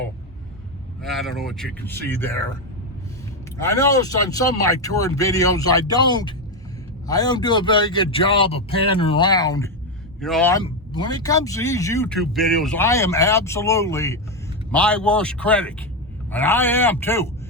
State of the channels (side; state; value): both; normal; correlation 0.08